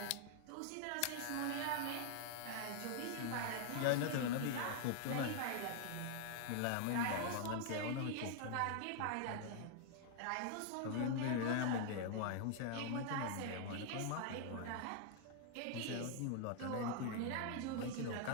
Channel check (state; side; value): different; both; correlation 0.00